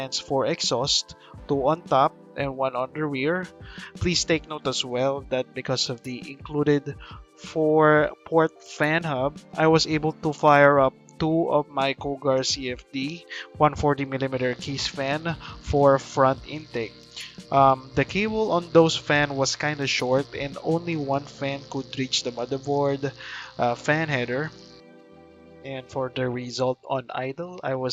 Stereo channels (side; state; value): both; identical; correlation 1.00